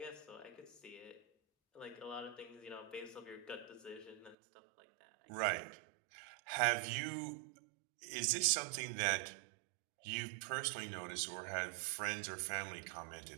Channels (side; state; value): left; drops out; at 4.4 s